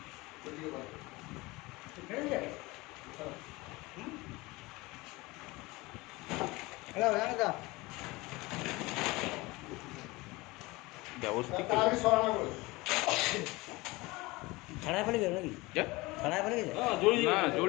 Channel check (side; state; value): right; quieter; 22.3 dB